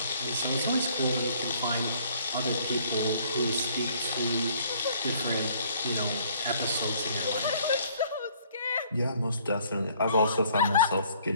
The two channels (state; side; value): inverted; both; correlation -0.60